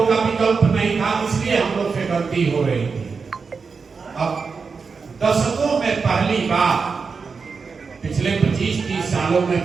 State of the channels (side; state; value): left; quieter; 5.1 dB